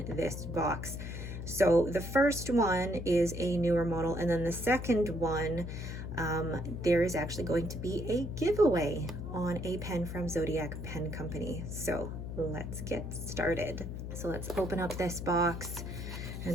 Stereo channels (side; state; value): left; noise; hum, 6 dB below the sound